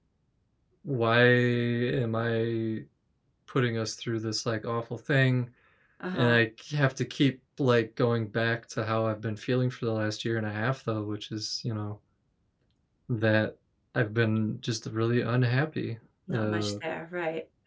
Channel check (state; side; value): identical; both; correlation 1.00